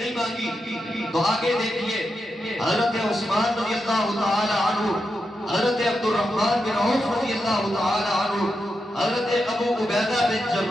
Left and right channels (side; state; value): both; normal; correlation 0.87